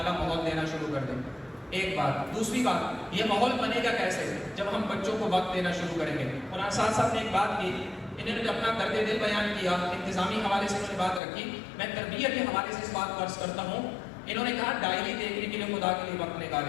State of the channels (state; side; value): drops out; right; at 11.2 s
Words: ماحول دینا شروع کر دیں. ایک بات. دوسری بات، یہ ماحول بنے گا کیسے؟ جب ہم بچوں کو وقت دینا شروع کریں گے. اور ساتھ ساتھ نے ایک بات کی انہوں نے اپنا درد دل بیان کیا، انتظامی حوالے سے انہوں نے بات رکھی، میں تربیت کے حوالے سے اس بات کو عرض کرتا ہوں. انہوں نے کہا ڈائری دیکھنے کے لیے خدا کے لیے وقت